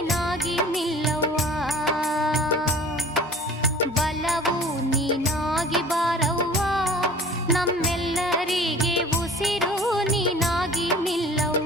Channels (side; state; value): both; normal; correlation 0.45